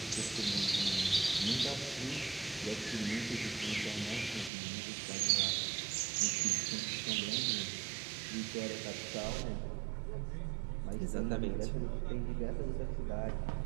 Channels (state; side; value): drops out; left; at 4.5 s